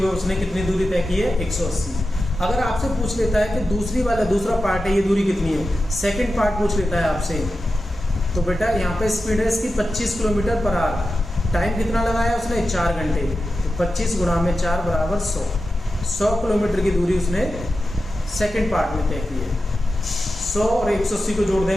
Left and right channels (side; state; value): both; normal; correlation 0.91